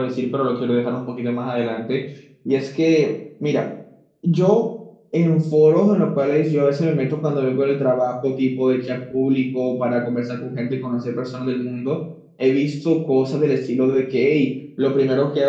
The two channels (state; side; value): identical; both; correlation 1.00